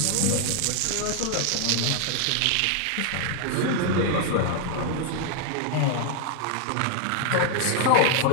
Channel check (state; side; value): different; both; correlation 0.00